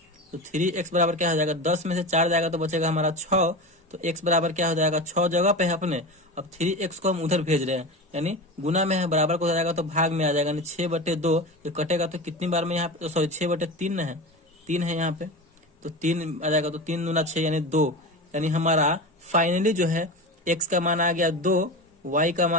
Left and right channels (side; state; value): both; normal; correlation 0.26